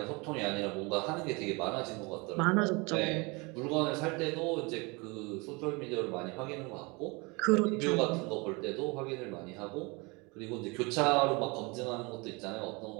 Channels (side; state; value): left; quieter; 27.7 dB